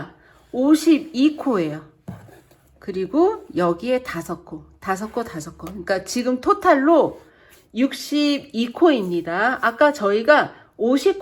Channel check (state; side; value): identical; both; correlation 1.00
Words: 52코예요. 그리고 여기에 5코, 5코, 5코. 그러니까 지금 토탈로 62코입니다. 아까 저희가